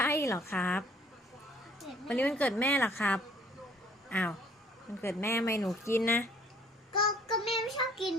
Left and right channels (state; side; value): normal; both; correlation 0.58